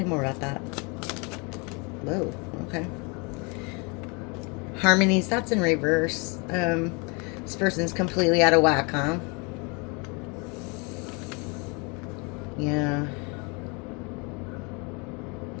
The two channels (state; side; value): quieter; right; 31.2 dB